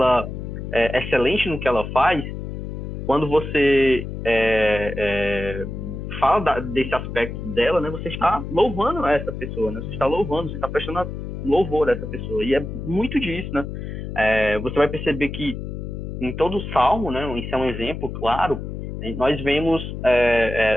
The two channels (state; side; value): noise; left; hum, 7 dB below the sound